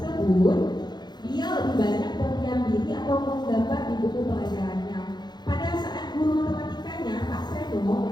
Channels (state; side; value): late; right; 0.21 ms